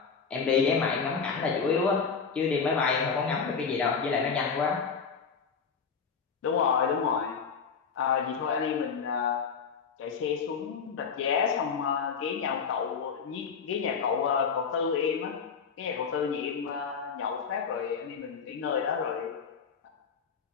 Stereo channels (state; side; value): quieter; right; 5.8 dB